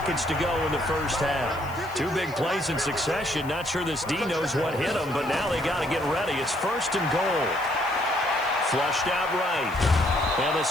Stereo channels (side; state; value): left; noise; hiss, 22 dB below the sound